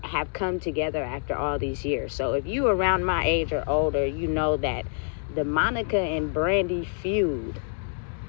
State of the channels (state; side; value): silent; right; digital silence